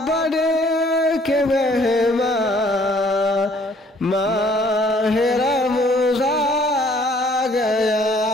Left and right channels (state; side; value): normal; both; correlation 0.60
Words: बन के मेहमान माह रमज़ान गया।